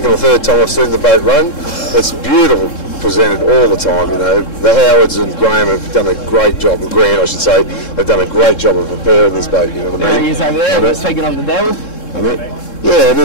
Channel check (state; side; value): late; right; 3.7 ms